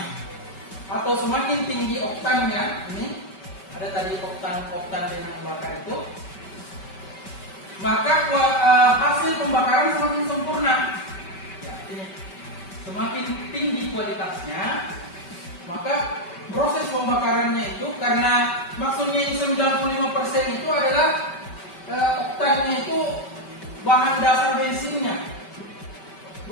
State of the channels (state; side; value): late; right; 5.2 ms